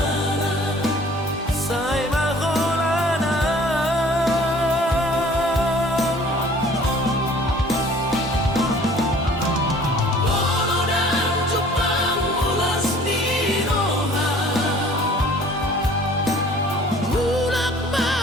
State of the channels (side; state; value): both; normal; correlation 0.52